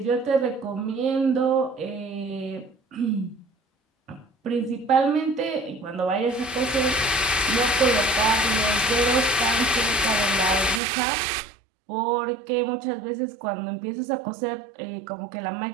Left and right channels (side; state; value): left; drops out; at 10.8 s